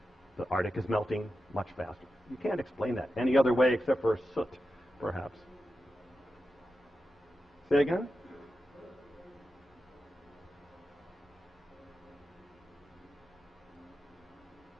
the Arctic is melting much faster. You can't explain that any other way except for soot, perhaps. Say again?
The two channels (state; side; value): normal; both; correlation 0.91